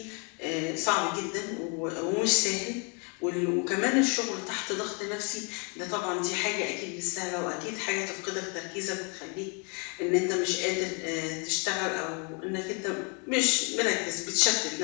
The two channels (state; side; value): quieter; right; 35.6 dB